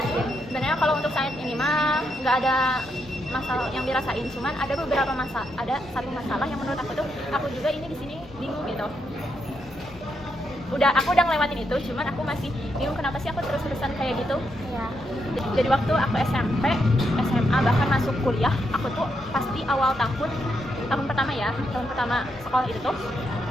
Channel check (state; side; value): normal; both; correlation 0.80